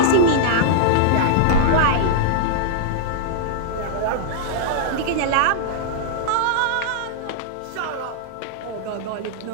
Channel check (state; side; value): different; both; correlation -0.01